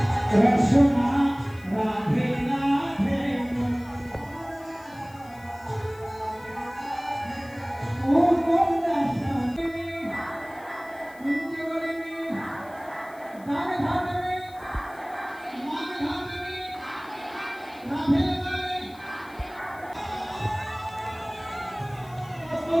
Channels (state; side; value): noise; left; hiss, 25 dB below the sound